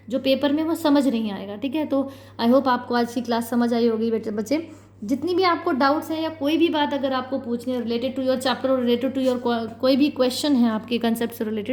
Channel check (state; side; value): identical; both; correlation 1.00